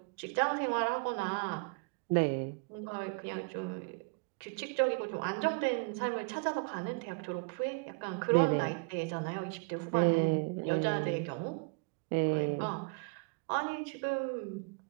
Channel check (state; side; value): quieter; left; 34.2 dB